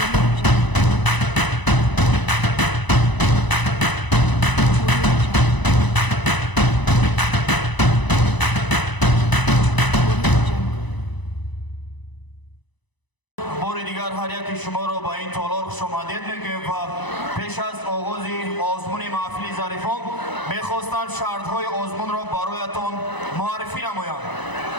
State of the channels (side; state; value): right; late; 1.0 ms